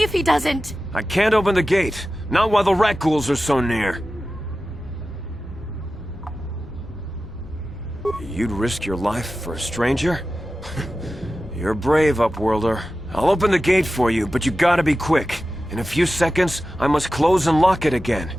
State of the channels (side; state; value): both; normal; correlation 0.94